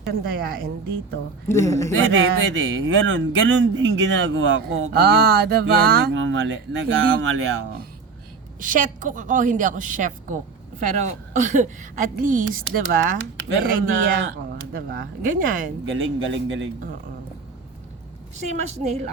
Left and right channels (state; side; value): quieter; left; 4.7 dB